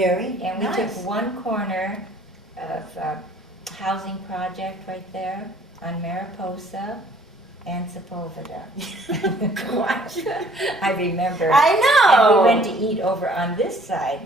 And we nice. took one corner of a housing project right there on Mariposa and Sepulveda. Gosh. I remember. I know. And we went to eat over on this side,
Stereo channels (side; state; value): both; normal; correlation 0.57